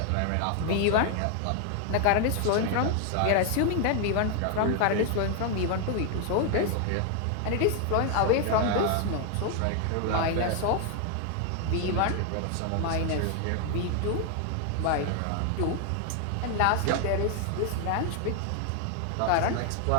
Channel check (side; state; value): both; different; correlation 0.00